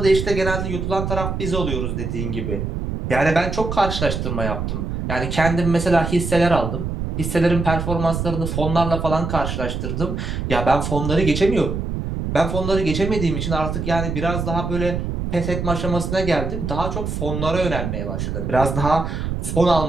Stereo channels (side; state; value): right; noise; rumble, 3 dB below the sound